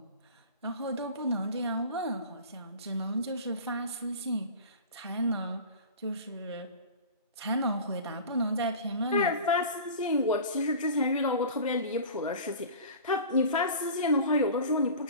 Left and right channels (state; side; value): inverted; both; correlation -0.37